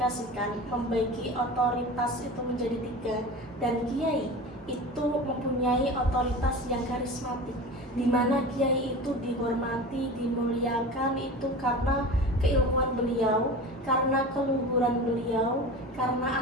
membagi otoritas itu menjadi 3, dan kiai itu mempunyai otoritas yang karismatik, di mana kiai itu dihormati, dimuliakan itu karena keilmuan beliau, karena keluhuran beliau, karena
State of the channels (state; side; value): normal; both; correlation 0.33